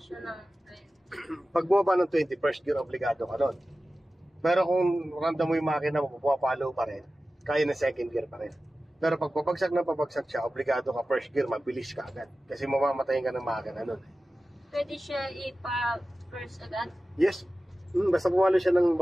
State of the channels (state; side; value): normal; both; correlation 0.95